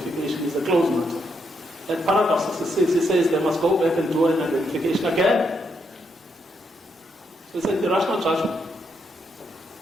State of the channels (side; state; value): both; normal; correlation 0.78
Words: is a closed matter. At paragraph 66, he says they must go back and do an identification again. So it's an irrational judgment.